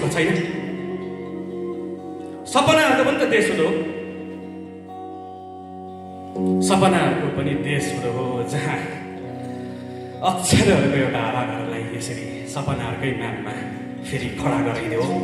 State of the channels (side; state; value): both; identical; correlation 1.00